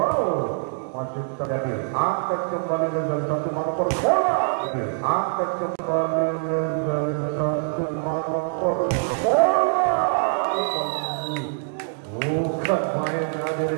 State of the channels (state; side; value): silent; left; digital silence